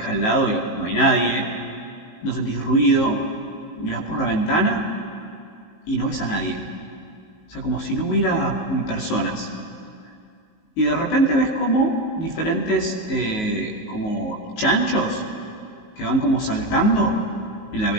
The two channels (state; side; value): late; right; 19 ms